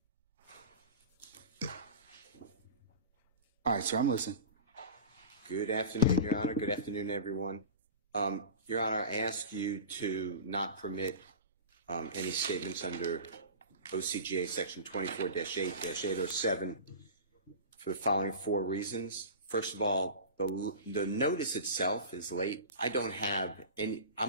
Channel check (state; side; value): inverted; both; correlation -0.33